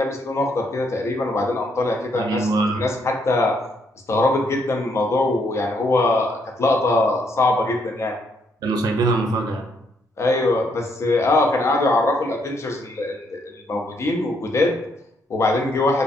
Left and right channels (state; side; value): normal; both; correlation 0.73